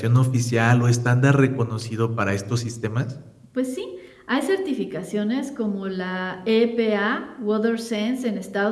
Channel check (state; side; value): identical; both; correlation 1.00